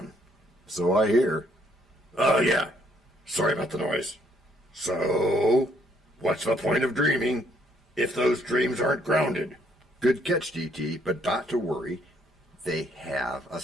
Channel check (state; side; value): normal; both; correlation 0.68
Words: So I hear. Oh, yeah. Sorry about the noise. So, what's the point of dreaming if those dreams aren't grounded. Good catch, DT, but not to worry. They have a